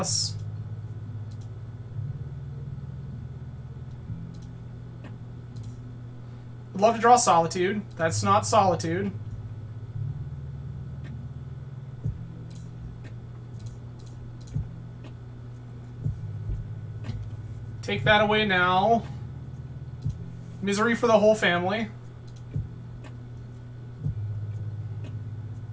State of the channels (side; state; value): both; identical; correlation 1.00